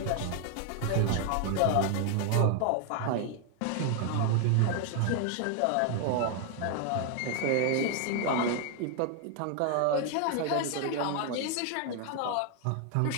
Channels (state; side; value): different; both; correlation 0.00